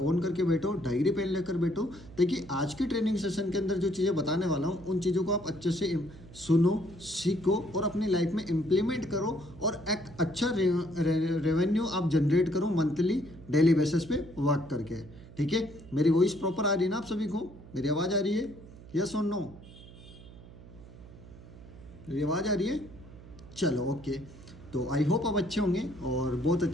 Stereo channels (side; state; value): right; noise; hum, 18 dB below the sound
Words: ऑन करके बैठो, डायरी पेन लेकर बैठो, ताकि आज की ट्रेनिंग सेशन के अंदर जो चीज़ें बताने वाला हूँ उन चीज़ों को आप अच्छे से सुनो, सीखो और अपनी लाइफ में इम्प्लीमेंट करो और एक अच्छा रेवेन्यू आप जनरेट करो मंथली डेली बेसिस पे वर्क करके। ठीक है, मेरी वॉइस प्रॉपर आ रही है ना आप सभी को? मेरी आवाज़ आ रही है? यस और नो? मेरी आवाज़ आ रही है? चलो ओके। तो आई होप आप अच्छे होंगे और बहुत